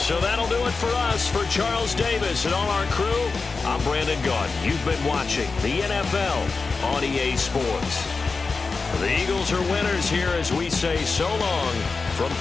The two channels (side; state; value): right; quieter; 4.3 dB